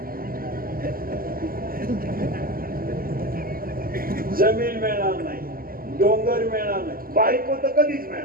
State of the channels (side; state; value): left; late; 0.42 ms